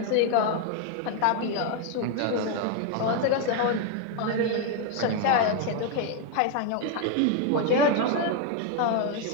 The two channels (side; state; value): both; different; correlation 0.01